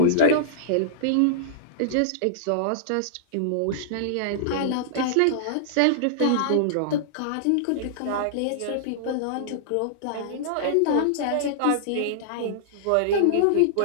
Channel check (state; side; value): different; both; correlation -0.02